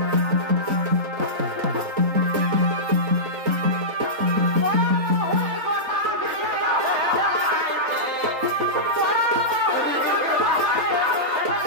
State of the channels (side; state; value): left; late; 3.9 ms